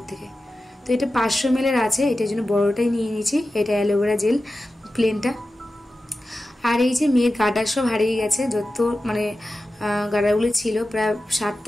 থেকে। তো এটা 500 ml আছে, এটার জন্য বড়োটাই নিয়ে নিয়েছি, এটা অ্যালোভেরা জেল প্লেনটা। আর এই যে মেয়ের গার্ডার সব হারিয়ে গেছে, যত মানে গার্ডারগুলি ছিল প্রায়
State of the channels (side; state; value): both; normal; correlation 0.93